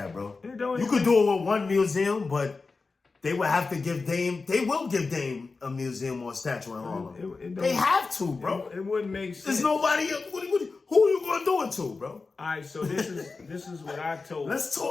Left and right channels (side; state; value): right; quieter; 4.1 dB